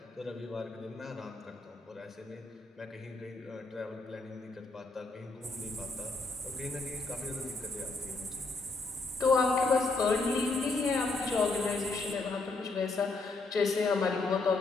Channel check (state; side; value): quieter; right; 3.5 dB